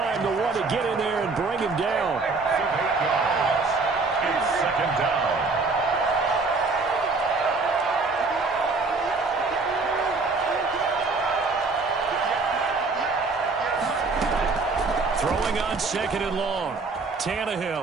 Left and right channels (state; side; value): quieter; left; 3.9 dB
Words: the one to get in there and bring him down. 8 yards. It's 2nd down. Throwing on 2nd and long.